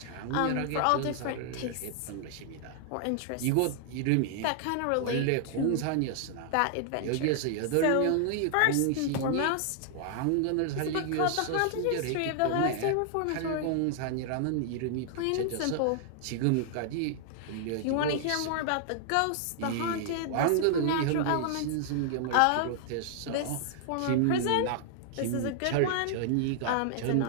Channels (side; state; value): both; different; correlation 0.00